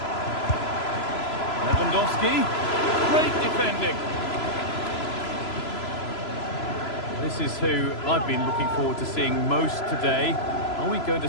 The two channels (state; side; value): late; right; 3.0 ms